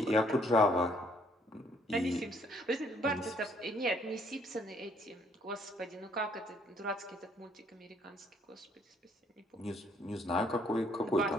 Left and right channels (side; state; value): both; normal; correlation 0.65